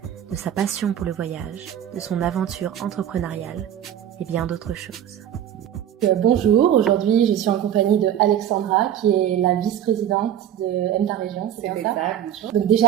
de sa passion pour le voyage, de son aventure entrepreneuriale et bien d'autres choses. Bonjour, aujourd'hui je suis en compagnie de Alexandra qui est la vice-présidente de M Ta Région, c'est bien ça? Bonjour. Donc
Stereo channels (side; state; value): left; quieter; 10.4 dB